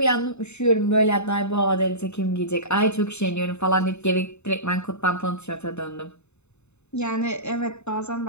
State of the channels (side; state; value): right; late; 0.82 ms